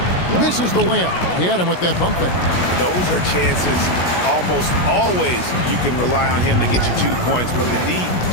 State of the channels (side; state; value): right; late; 16 ms